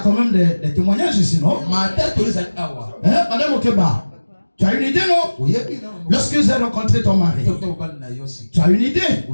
même des témoignages ici, non? Madame Okeba, tu as une idée, non? Lorsque j'ai rencontré ton mari, tu as une idée?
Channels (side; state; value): both; inverted; correlation -1.00